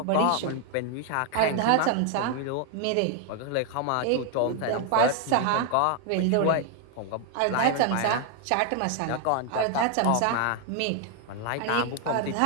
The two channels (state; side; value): different; both; correlation 0.00